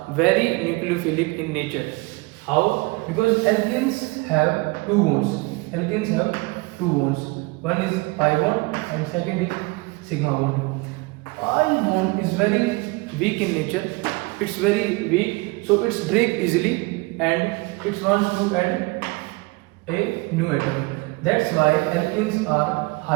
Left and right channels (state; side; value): quieter; left; 25.2 dB